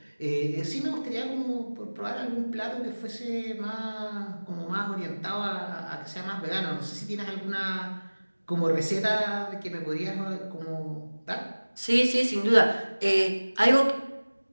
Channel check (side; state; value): both; inverted; correlation -1.00